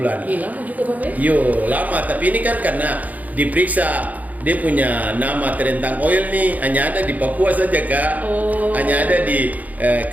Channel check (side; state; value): left; late; 0.078 ms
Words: Lama juga Bapak ya? Yo lama, tapi ini kan karena diperiksa dia punya nama terentang oil nih hanya ada di Papua saja kak, hanya ada di